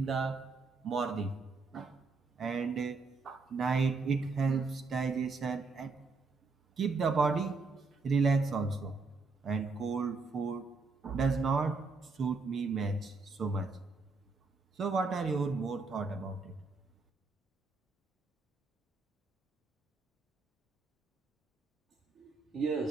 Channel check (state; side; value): quieter; left; 4.2 dB